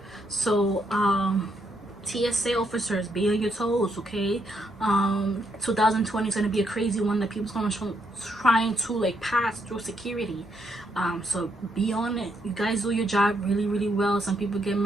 So TSA officers, be on your toes, okay? 2020 is going to be a crazy one that people's going to trying to like pass through security. So be on it. You guys do your job really well. Some people get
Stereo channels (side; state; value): both; normal; correlation 0.77